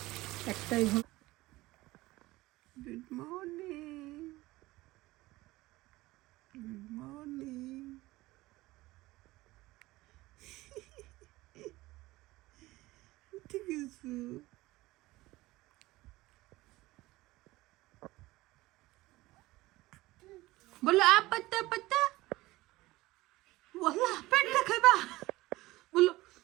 একটাই। Good morning, good morning. ঠিক আছে, বলো আ পাত্তা পাত্তা, ওয়াল্লাহ পেটটা খাইবা, বলো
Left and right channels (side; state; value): left; quieter; 19.0 dB